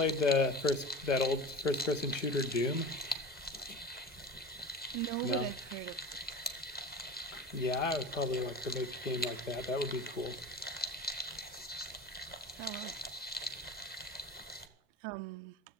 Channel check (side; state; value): both; normal; correlation 0.33